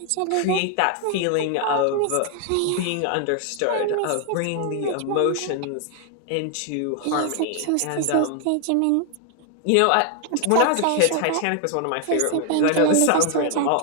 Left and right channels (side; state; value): both; different; correlation 0.00